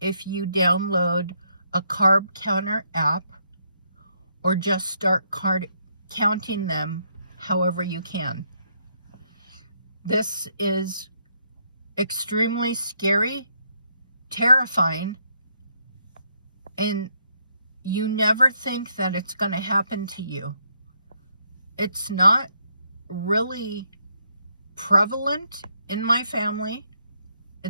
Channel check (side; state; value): both; inverted; correlation -0.75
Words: if you download a carb counter app or just start counting them however you can. This is extremely scary, terrifying, and you never think that it's going to happen to you. It's not really prevalent in my family.